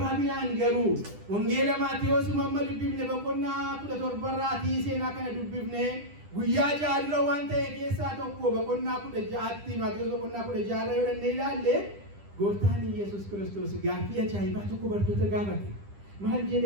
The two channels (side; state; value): left; late; 10 ms